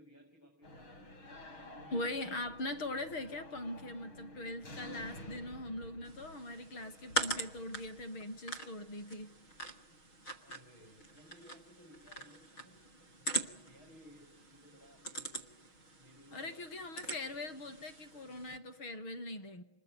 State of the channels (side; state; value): right; late; 6.3 ms